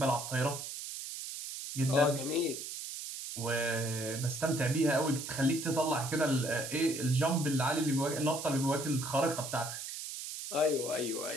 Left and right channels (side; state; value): right; noise; hiss, 7 dB below the sound